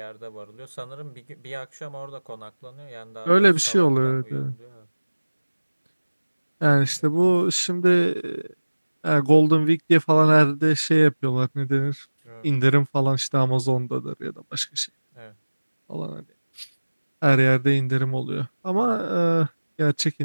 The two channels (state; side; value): inverted; both; correlation -1.00